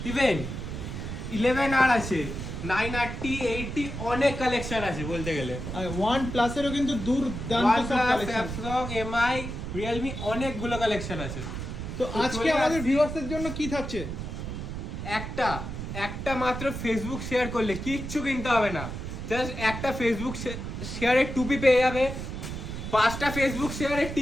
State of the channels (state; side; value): noise; right; rumble, 6 dB below the sound